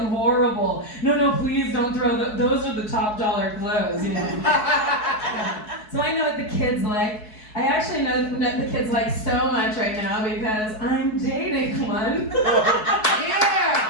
horrible. No, please don't throw those are the top dollar clothes, you know. Yeah. So I know what the kids like. I actually know what the kids like so much right now because I'm dating one.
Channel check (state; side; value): late; right; 4.7 ms